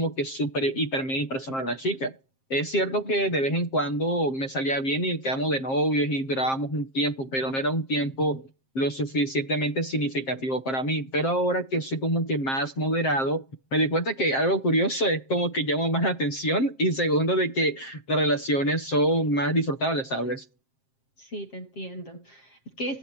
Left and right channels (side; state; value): right; late; 7.5 ms